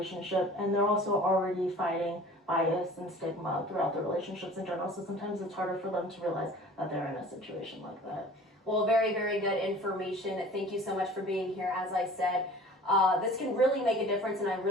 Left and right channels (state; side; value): normal; both; correlation 0.45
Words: and they're also already fighting bias and stigma throughout their relationships in general, so sometimes it's harder for them to realize that they're in a situation like that. Well, very, very good information. Thank you so much for being here. As I said, this can really make a difference, and I